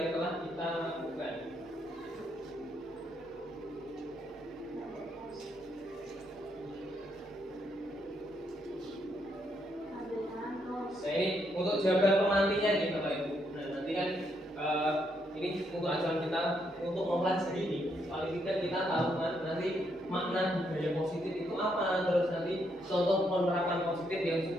telah kita lakukan. Nah ini untuk jawaban pemantinya nih Bapak Ibu. Nah nanti kan ini untuk acuan kita untuk mempelajari ini. Paling tidak kita tahu kan nanti makna budaya positif itu apa, terus nanti contoh penerapan positif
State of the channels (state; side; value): normal; both; correlation 0.76